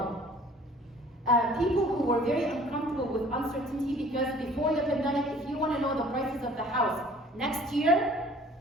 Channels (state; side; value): normal; both; correlation 0.52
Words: People who were very uncomfortable with uncertainty, because before the pandemic, if you want to know the prices of the house next year,